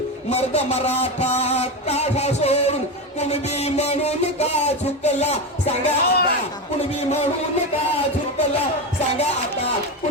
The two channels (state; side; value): normal; both; correlation 0.17